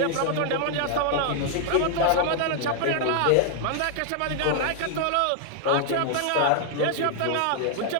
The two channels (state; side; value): different; both; correlation 0.00